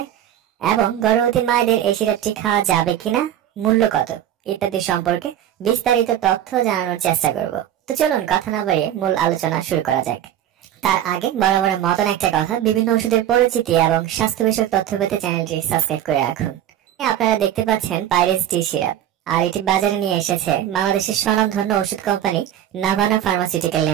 এবং গর্ভবতী মায়েদের এই সিরাপটি খাওয়া যাবে কিনা, মূল্য কত ইত্যাদি সম্পর্কে বিস্তারিত তথ্য জানানোর চেষ্টা করব। তো চলুন কথা না বাড়িয়ে মূল আলোচনা শুরু করা যাক। তার আগে বরাবরের মতন একটা কথা, বিভিন্ন ওষুধের পরিচিতি এবং স্বাস্থ্য বিষয়ক তথ্য পেতে চ্যানেলটি সাবস্ক্রাইব করে রাখুন। আপনারা দেখতে পাচ্ছেন পাইরেস ডি সিরাপ, আর এটি বাজারে নিয়ে এসেছে বাংলাদেশের স্বনামধন্য ওষুধ কোম্পানি নাভানা ফার্মাসিউটিক্যাল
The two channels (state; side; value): quieter; left; 11.2 dB